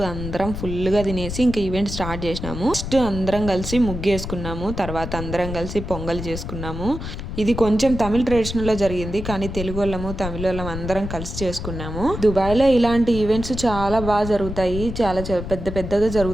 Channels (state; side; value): noise; left; rumble, 7 dB below the sound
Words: అందరం ఫుల్గా తినేసి ఇంకా ఈవెంట్ స్టార్ట్ చేసినాము. ఫస్ట్ అందరం కలిసి ముగ్గేసుకున్నాము. తర్వాత అందరం కలిసి పొంగల్ చేసుకున్నాము. ఇది కొంచెం తమిళ ట్రెడిషనల్లో జరిగింది, కానీ తెలుగు వాళ్ళము తమిళ వాళ్ళం అందరం కలిసి చేసుకున్నాము. దుబాయ్లో ఇలాంటి ఈవెంట్స్ చాలా బాగా జరుగుతాయి. చాలా పెద్ద పెద్దగా